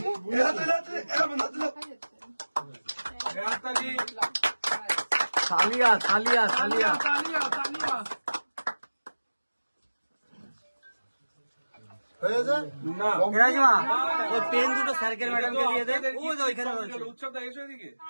সালিয়া সালিয়া সালিয়া হয়েছে না। রাজমা ওই পেন দুটো স্যারকেল ম্যাডামকে দিয়ে দে। ওই যে ওইখানে রয়েছে। উৎসবটা এসো এদিকে।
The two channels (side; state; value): both; inverted; correlation -1.00